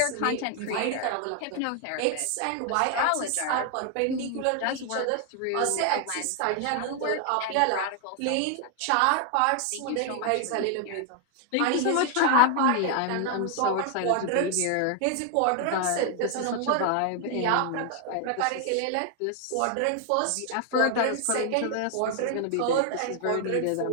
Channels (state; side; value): different; both; correlation 0.00